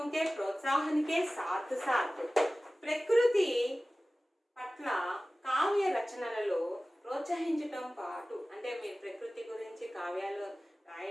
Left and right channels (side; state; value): both; normal; correlation 0.97